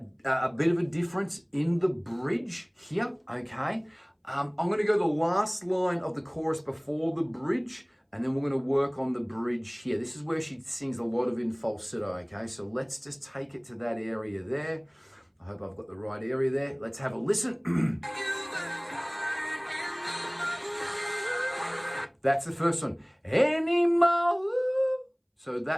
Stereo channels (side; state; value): both; identical; correlation 1.00